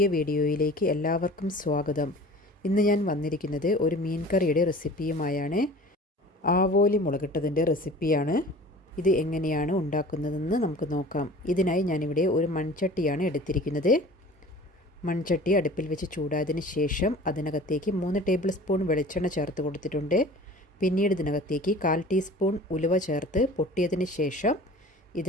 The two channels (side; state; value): both; normal; correlation 0.43